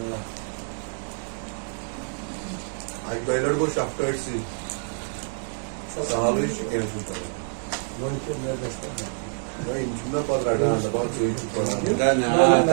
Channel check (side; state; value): left; silent; 61 dB below the other